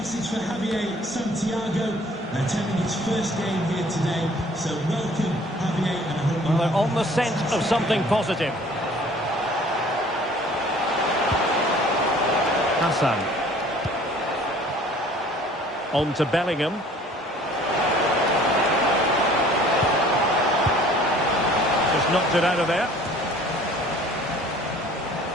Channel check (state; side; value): normal; both; correlation 0.52